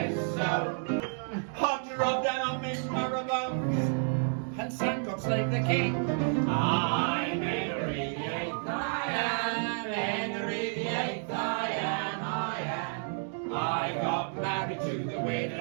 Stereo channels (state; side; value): silent; left; 57 dB below the other